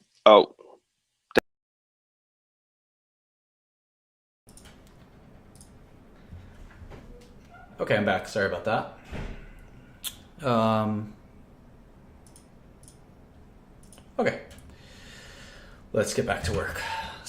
Oh. Okay, I'm back. Sorry about that. Okay. Let's get back to work.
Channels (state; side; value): identical; both; correlation 1.00